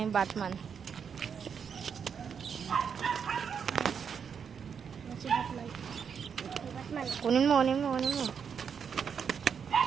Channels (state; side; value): quieter; left; 6.9 dB